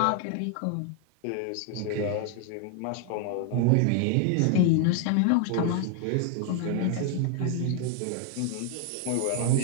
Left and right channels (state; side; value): different; both; correlation 0.00